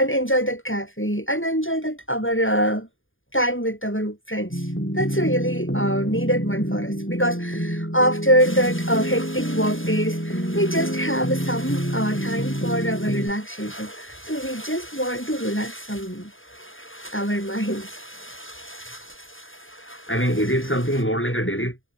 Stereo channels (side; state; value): right; late; 0.58 ms